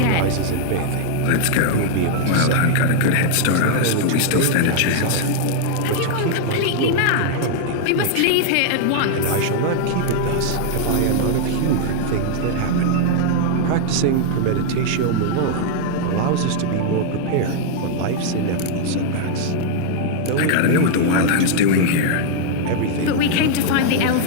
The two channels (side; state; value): both; different; correlation -0.01